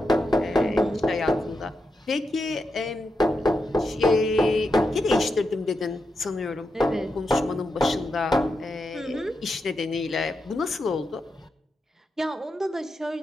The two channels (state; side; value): normal; both; correlation 0.86